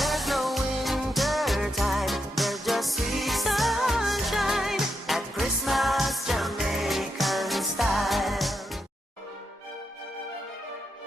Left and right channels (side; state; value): both; normal; correlation 0.83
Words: no winter time, there's just sweet sunshine at Christmas Jamaican style.